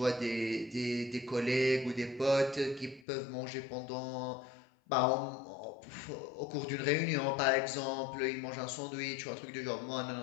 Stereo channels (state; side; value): drops out; right; at 3.1 s